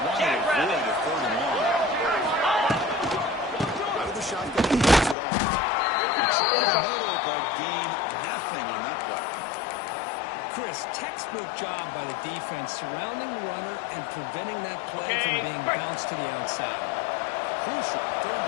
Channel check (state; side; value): drops out; right; at 5.2 s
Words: want to Jack avoid Rabbit. a 3rd and long. Out of the shotgun, he gets it off. They try the middle, but gain nothing on that play. Chris, textbook job by the defense surrounding the runner and preventing that play Okay, from being break. bounced to the outside. Crucial. 3rd